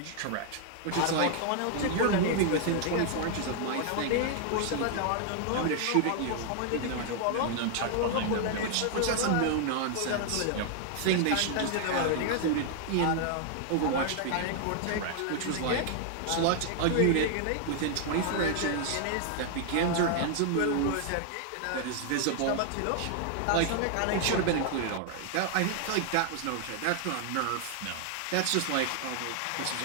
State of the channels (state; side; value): different; both; correlation 0.00